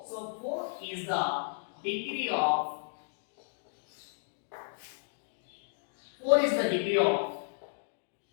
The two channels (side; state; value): right; silent; digital silence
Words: So, 4 is the degree of 4 is the degree of